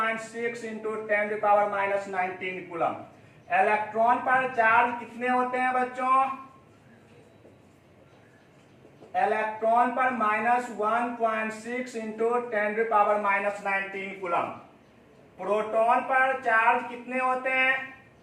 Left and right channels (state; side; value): identical; both; correlation 1.00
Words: इंटू 10⁻⁻19 कूलम। इलेक्ट्रॉन पर चार्ज कितने होते हैं बच्चों? इलेक्ट्रॉन पर -1.6 इंटू 10⁻⁻19 कूलम। प्रोटॉन पर चार्ज कितने होते हैं?